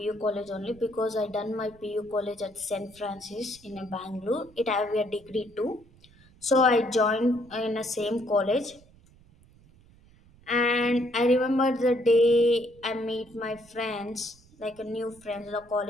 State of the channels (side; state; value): right; noise; rumble, 27 dB below the sound